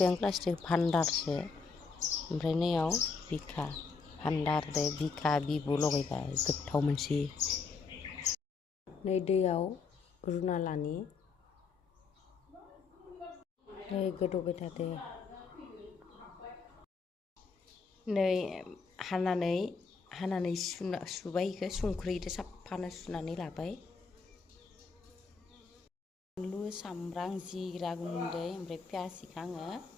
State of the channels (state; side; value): quieter; right; 4.8 dB